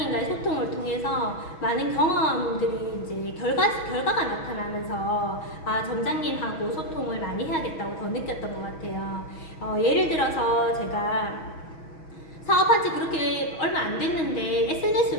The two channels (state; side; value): late; right; 6.2 ms